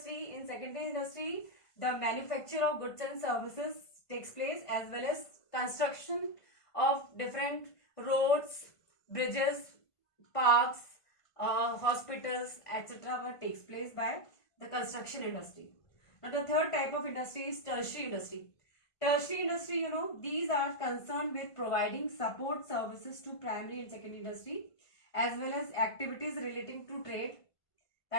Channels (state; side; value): late; right; 1.5 ms